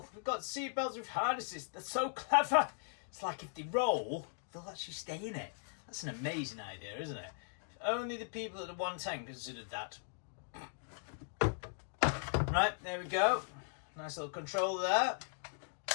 we've got seatbelts with harnesses. They're so clever. It's like if they roll, they'll actually stay in it. That's an amazing idea, isn't it? If only the people at the 110 considered that. Right, there we go. Nice little controller there.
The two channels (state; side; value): silent; right; digital silence